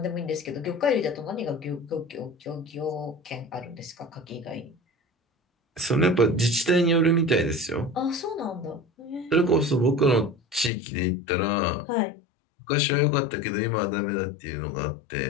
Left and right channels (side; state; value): right; drops out; at 10.7 s